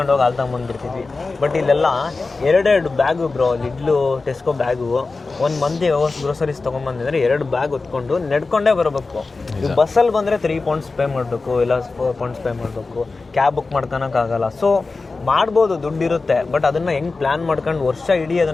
ಹೋಗಿ ಹಾಲು ತೊಗೊಂಬಂದ್ಬಿಡ್ತಿದ್ವಿ. ಬಟ್ ಇಲ್ಲೆಲ್ಲ 2 ಬ್ಯಾಗು ಬ್ರೋ, ಲಿಡ್ಲು ಟೆಸ್ಕೋ ಬ್ಯಾಗು. ಒಂದು ಮಂದಿ ಗ್ರೋಸರೀಸ್ ತೊಗೊಂಬಂದಿದ್ರೆ 2 ಬ್ಯಾಗ್ ಹೊತ್ಕೊಂಡು ನಡ್ಕೊಂಡೇ ಬರಬೇಕು. ಈಗ ಬಸ್ಸಲ್ಲಿ ಬಂದರೆ 3 pounds ಪೇ ಮಾಡಬೇಕು, ಇಲ್ಲ 4 pounds ಪೇ ಮಾಡಬೇಕು. ಕ್ಯಾಬ್ ಬುಕ್ ಮಾಡ್ಕೊಳಕ್ಕಾಗಲ್ಲ. ಸೊ ಮಾಡ್ಬೋದು, ದುಡ್ಡಿರುತ್ತೆ. ಬಟ್ ಅದನ್ನು ಹೆಂಗೆ ಪ್ಲ್ಯಾನ್ ಮಾಡ್ಕೊಂಡು ವರ್ಷ ಇಡೀ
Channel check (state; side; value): quieter; right; 3.8 dB